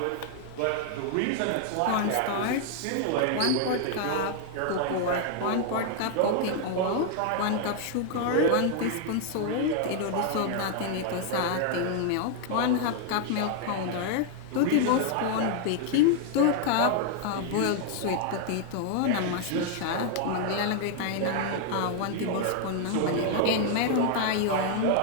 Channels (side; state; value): both; different; correlation 0.00